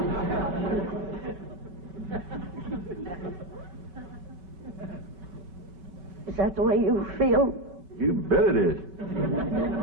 Is that the way you feel? You bet it is.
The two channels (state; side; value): late; left; 5.4 ms